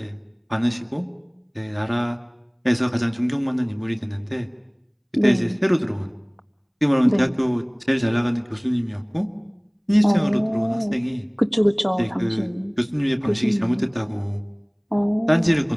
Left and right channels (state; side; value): identical; both; correlation 1.00